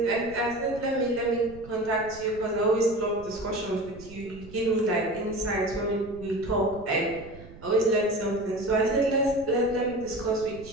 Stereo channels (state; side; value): noise; right; rumble, 18 dB below the sound